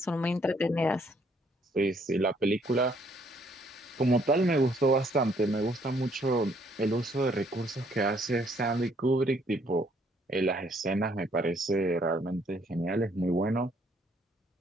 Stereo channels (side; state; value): both; normal; correlation 0.66